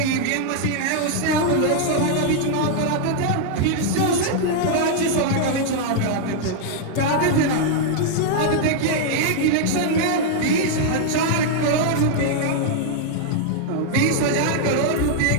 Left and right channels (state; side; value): different; both; correlation -0.01